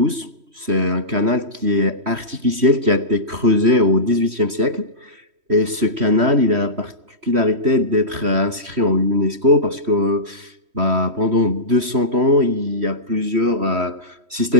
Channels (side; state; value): left; late; 3.1 ms